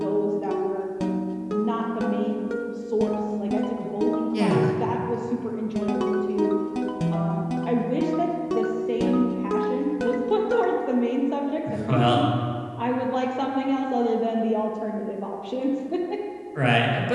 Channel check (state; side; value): identical; both; correlation 1.00